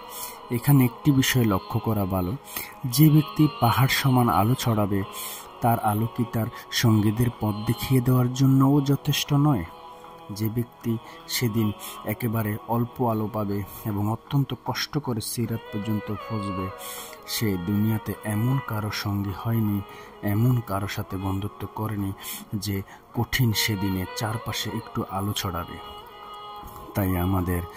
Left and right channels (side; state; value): both; identical; correlation 1.00